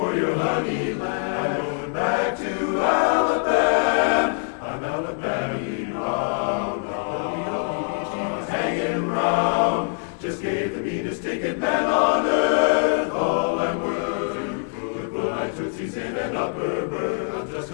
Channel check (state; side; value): silent; right; 57 dB below the other